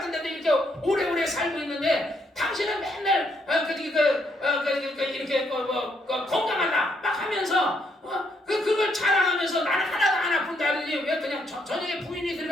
이렇게 오래오래 살고 있는데 당신은 맨날 이렇게 건강하다 막 하면서 그걸 자랑하면서 나는 하나도 안 아픈다더니 왜 그냥 저녁에 부인이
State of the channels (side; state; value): both; normal; correlation 0.73